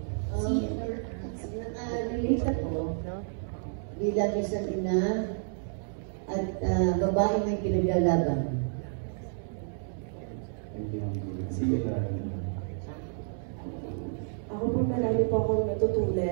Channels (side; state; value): left; silent; 58 dB below the other